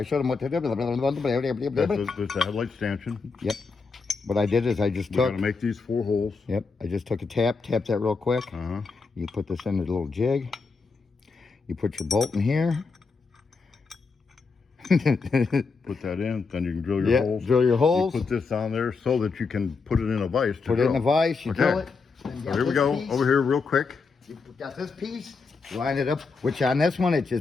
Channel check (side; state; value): right; quieter; 4.6 dB